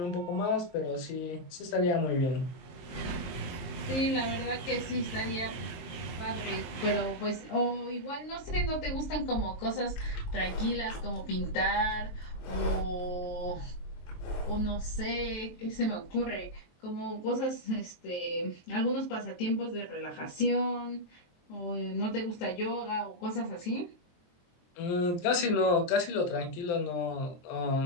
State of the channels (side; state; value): right; late; 23 ms